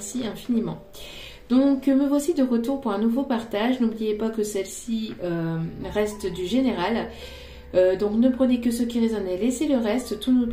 infiniment. Donc me voici de retour pour un nouveau partage. N'oubliez pas que celle-ci reste du général. Donc ne prenez que ce qui résonne et laissez le reste. Tout ne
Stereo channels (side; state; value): both; identical; correlation 1.00